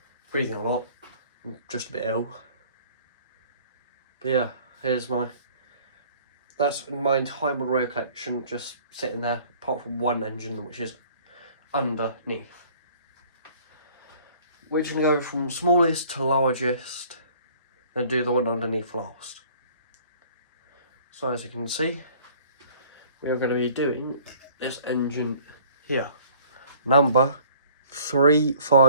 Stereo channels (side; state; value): both; inverted; correlation -0.53